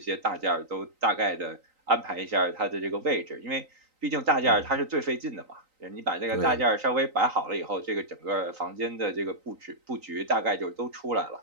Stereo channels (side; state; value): left; late; 3.9 ms